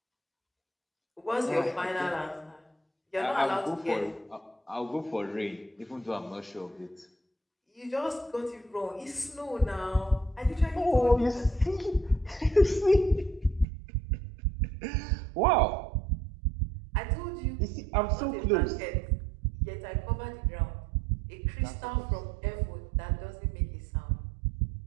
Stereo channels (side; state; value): left; drops out; at 13.7 s